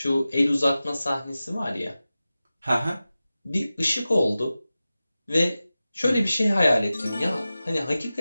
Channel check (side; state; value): both; inverted; correlation -0.95